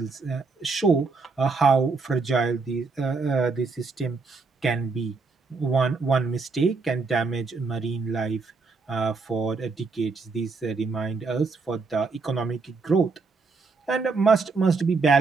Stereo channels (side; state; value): left; quieter; 4.3 dB